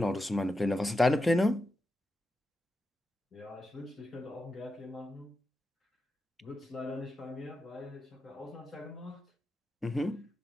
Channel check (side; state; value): both; normal; correlation 0.89